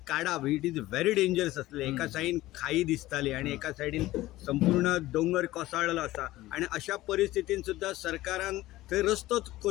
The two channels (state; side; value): quieter; right; 16.9 dB